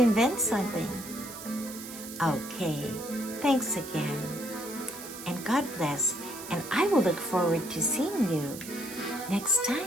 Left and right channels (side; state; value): right; noise; hiss, 12 dB below the sound